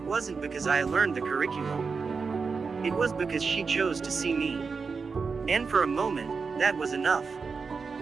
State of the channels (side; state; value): left; quieter; 5.0 dB